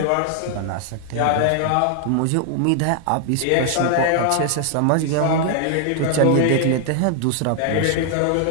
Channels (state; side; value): different; both; correlation 0.00